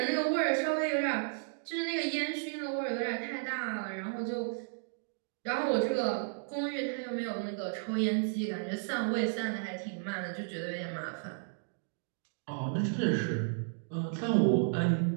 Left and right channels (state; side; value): silent; left; digital silence